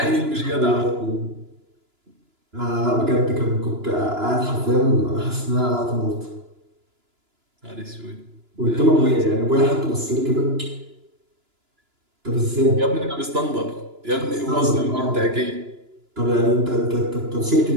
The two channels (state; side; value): late; left; 2.9 ms